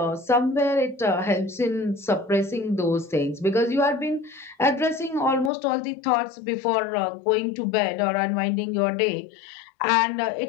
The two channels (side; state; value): right; drops out; at 5.5 s